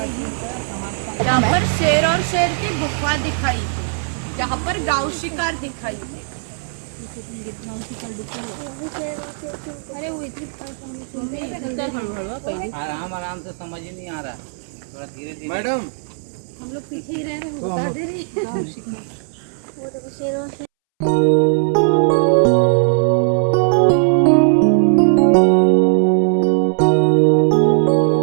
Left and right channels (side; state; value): left; silent; 67 dB below the other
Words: यहाँ पर शेर और शेर की गुफा दिखाई थी। यहाँ पर गांव शिकार दिखाई थी। अरे वो आराम आराम से समझ ही नहीं आ रहा, थोड़ा धीरे धीरे। मैडम हम लोग पीछे ही रह रहे हैं, बता दे रही।